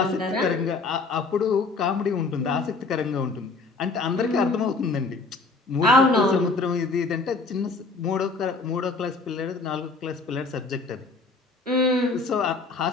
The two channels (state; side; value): quieter; right; 3.8 dB